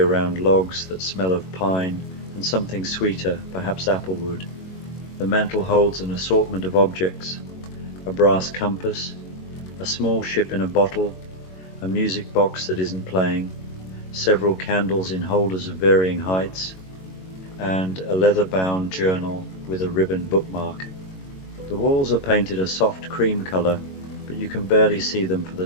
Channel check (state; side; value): late; right; 21 ms